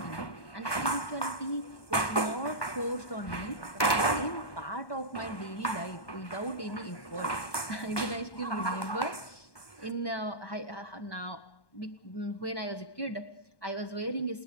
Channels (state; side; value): late; right; 1.2 ms